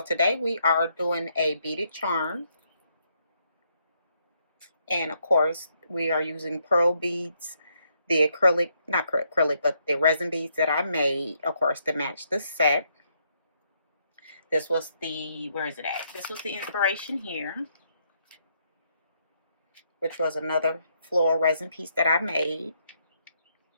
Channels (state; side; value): inverted; both; correlation -0.75